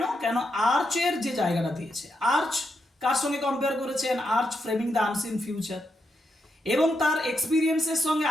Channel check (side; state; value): both; normal; correlation 0.83